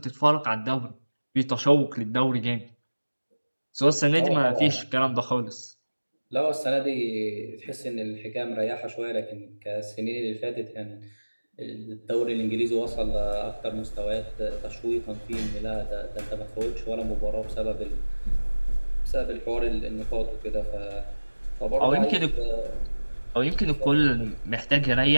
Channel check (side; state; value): both; inverted; correlation -1.00